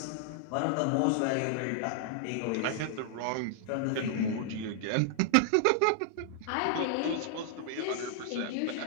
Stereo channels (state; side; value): different; both; correlation -0.01